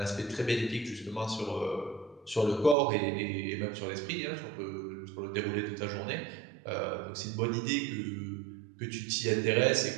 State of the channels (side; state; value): left; drops out; at 2.8 s